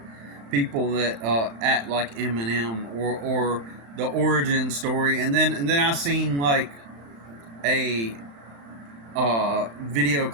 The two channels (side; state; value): left; late; 35 ms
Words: people that act like Eminem or the origin story, and then I seen like a video